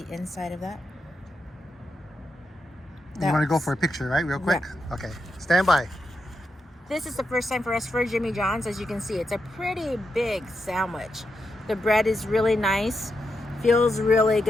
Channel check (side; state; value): both; normal; correlation 0.85